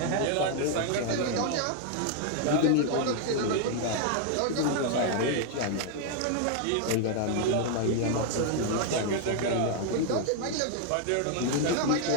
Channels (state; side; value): different; both; correlation 0.00